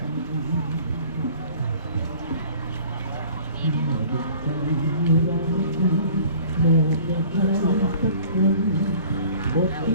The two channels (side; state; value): both; inverted; correlation -0.49